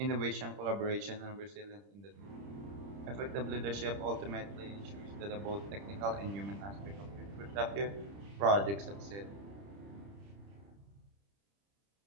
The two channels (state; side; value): late; left; 30 ms